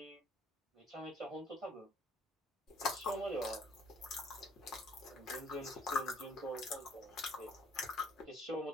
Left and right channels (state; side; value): normal; both; correlation 0.61